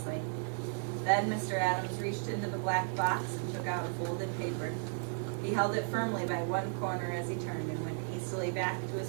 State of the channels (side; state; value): left; silent; 55 dB below the other